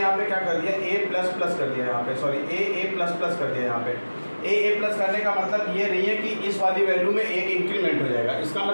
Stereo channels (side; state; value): both; inverted; correlation -1.00